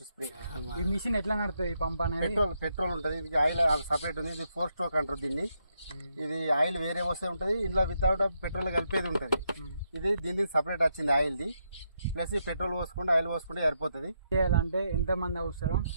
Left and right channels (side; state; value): both; inverted; correlation -0.79